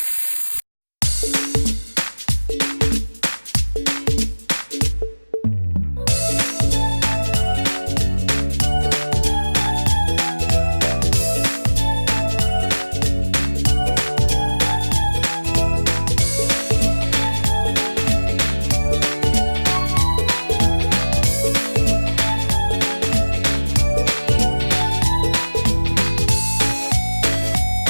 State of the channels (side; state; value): both; inverted; correlation -1.00